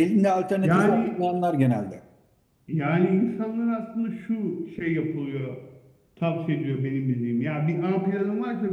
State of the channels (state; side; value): identical; both; correlation 1.00